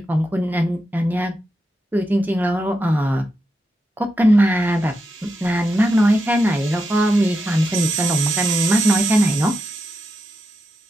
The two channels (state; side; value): normal; both; correlation 0.86